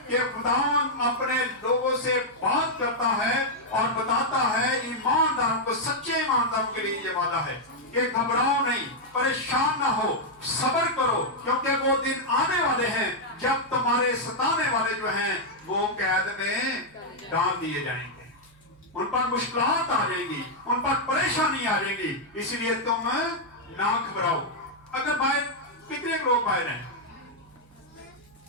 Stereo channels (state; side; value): noise; right; hum, 28 dB below the sound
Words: कि खुदावंद अपने लोगों से बात करता है और बताता है ईमानदारों को, सच्चे ईमानदारों के लिए ये वादा है कि घबराओ नहीं, परेशान ना हो, सब्र करो, क्योंकि वो दिन आने वाले हैं जब तुम्हारे सताने वाले जो हैं वो कैद में डाल दिए जाएंगे, उन पर मुश्किलात आ जाएंगी, उन पर परेशानी आ जाएगी। इसलिए तुम ना घबराओ। अगर बाहर कितने लोग बाहर हैं,